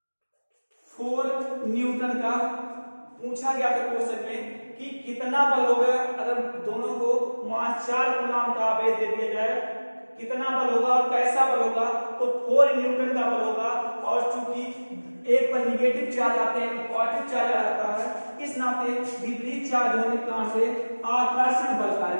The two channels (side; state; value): both; inverted; correlation -1.00